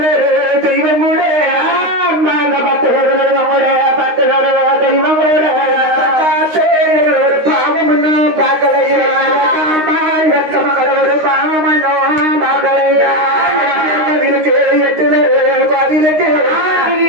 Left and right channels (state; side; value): late; left; 13 ms